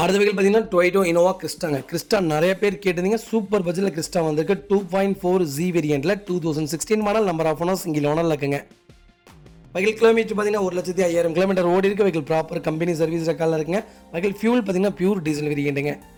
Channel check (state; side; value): identical; both; correlation 1.00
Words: வகையில் பார்த்தீங்கன்னா டொயோட்டோ இனோவா கிறிஸ்டா நிறைய பேர் கேட்டிருந்தீங்க. சூப்பர் பட்ஜெட்டில் கிறிஸ்டா வந்திருக்கு. 2.4 Z வேரியண்ட்டில் 2016 model. Number of owner single ஓனரில் இருக்குங்க. வகையில் கிலோமீட்டர் பார்த்தீங்கன்னா 1,05,000 கிலோமீட்டர் ஓடி இருக்குது. வகையில் ப்ராப்பர் கம்பெனி சர்வீஸ் ரெக்கார்டில் இருக்குங்க. வகையில் ஃபியூல் பார்த்தீங்கன்னா பியூர் டீசல் வேரியண்ட்டுங்க.